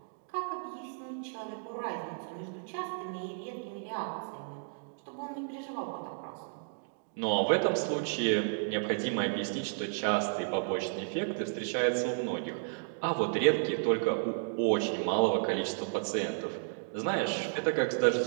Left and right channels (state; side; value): silent; left; digital silence